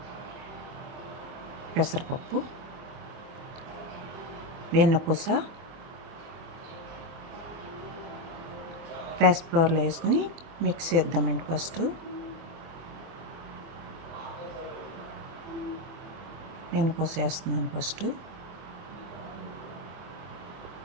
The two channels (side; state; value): left; late; 23 ms